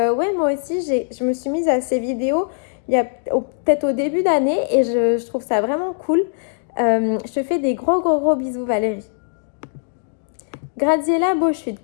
moi aussi je me suis mise à ces vidéos il y a peut-être au début d'année et je trouve ça vraiment cool. Je te fais des gros bisous Valérie. Graziella Beauchute,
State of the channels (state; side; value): silent; right; digital silence